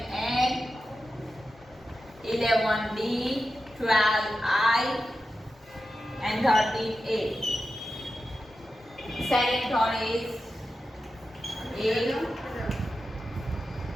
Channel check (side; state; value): both; normal; correlation 0.91